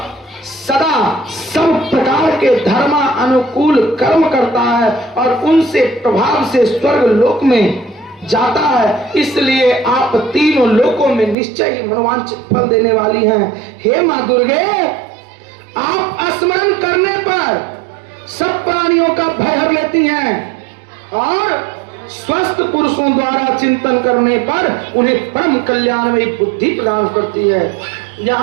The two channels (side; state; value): left; drops out; at 11.4 s